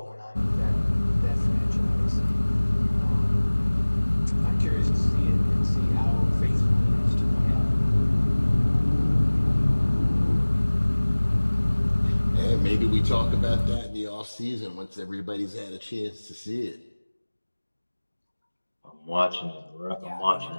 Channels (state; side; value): inverted; both; correlation -1.00